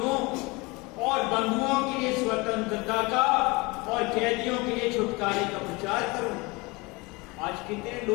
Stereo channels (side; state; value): right; quieter; 25.2 dB